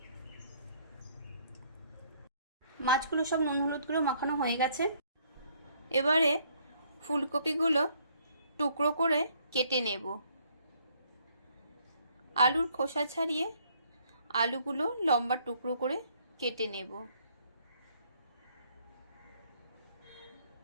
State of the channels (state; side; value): inverted; both; correlation -0.65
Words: মাছগুলো সব নুন হলুদ গুঁড়ো মাখানো হয়ে গেছে। এবারে ফুলকপিগুলো টুকরো করে কেটে নেব। আলুর খোসা ছাড়িয়ে আলুগুলো লম্বা টুকরো করে কেটে নেব।